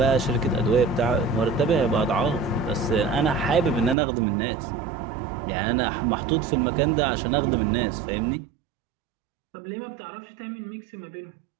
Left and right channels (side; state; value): left; drops out; at 4.0 s